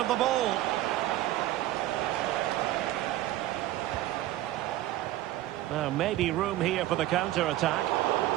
the ball. Now maybe room here for the counter-attack.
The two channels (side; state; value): left; quieter; 15.1 dB